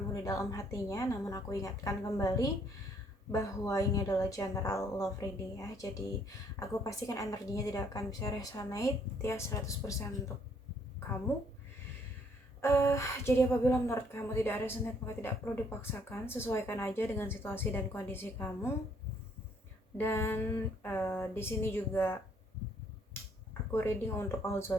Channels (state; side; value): normal; both; correlation 0.66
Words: di dalam hatinya. Namun aku ingatkan kembali bahwa ini adalah general love reading ya. Jadi aku pastikan energinya tidak akan bisa resonate ya 100% untuk kamu. Jadi apabila menurut kamu tidak resonate, maka tidak perlu dipaksakan, sesuaikan aja dengan situasi dan kondisi kamu. Dan di sini juga aku reading untuk all